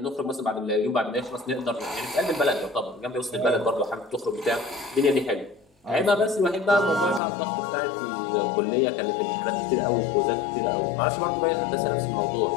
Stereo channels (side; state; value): right; drops out; at 7.2 s